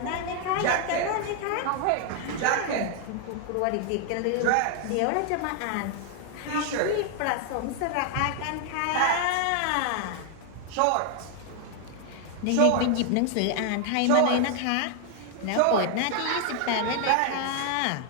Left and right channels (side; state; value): both; different; correlation 0.00